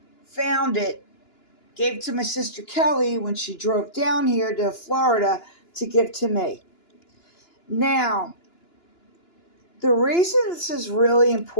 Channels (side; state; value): right; late; 2.9 ms